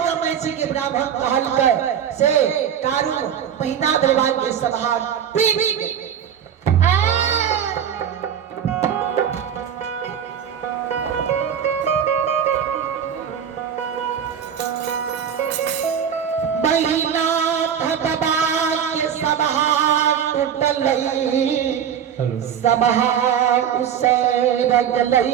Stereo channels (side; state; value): left; quieter; 8.7 dB